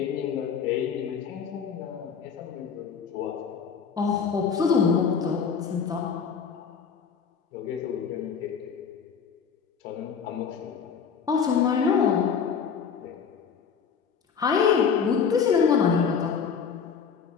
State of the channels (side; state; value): right; quieter; 6.6 dB